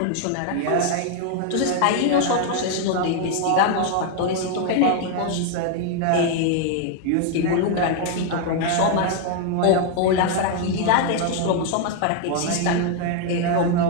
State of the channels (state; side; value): different; both; correlation 0.00